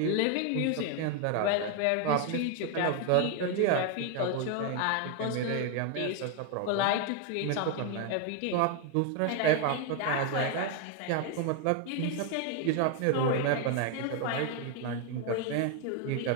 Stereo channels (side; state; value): both; different; correlation 0.01